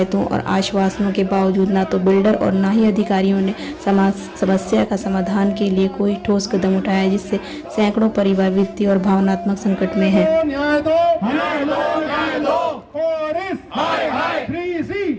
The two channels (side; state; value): both; identical; correlation 1.00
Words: और आश्वासनों के बावजूद न तो बिल्डर और न ही अधिकारियों ने समस्या का समाधान के लिए कोई ठोस कदम उठाया, जिससे सैकड़ों परिवार वित्तीय और भावनात्मक संकट में है। न्याय दो, न्याय दो, न्याय दो। ऑरिस, हाय हाय। 3C,